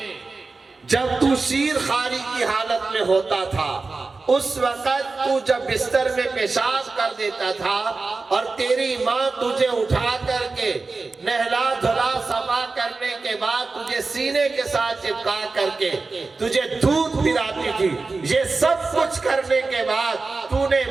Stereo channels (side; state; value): left; quieter; 3.9 dB